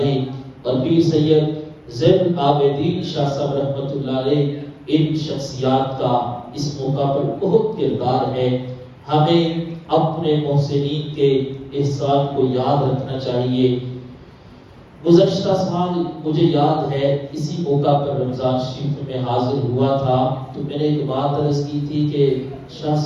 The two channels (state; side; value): identical; both; correlation 1.00